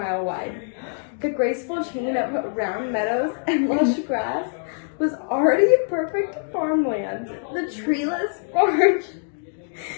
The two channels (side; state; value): right; silent; digital silence